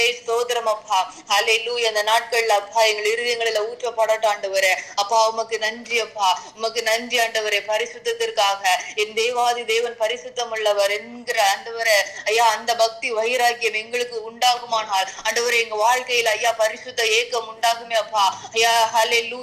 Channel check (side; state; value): both; identical; correlation 1.00